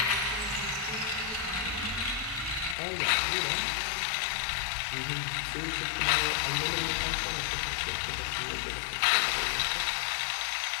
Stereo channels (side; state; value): right; drops out; at 2.8 s